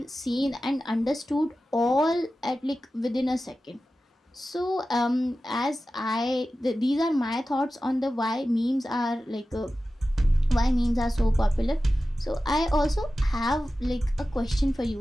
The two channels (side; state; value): both; normal; correlation 0.94